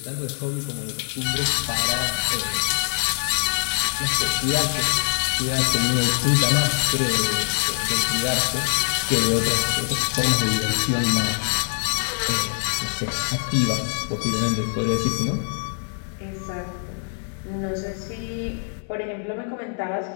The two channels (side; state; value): right; silent; digital silence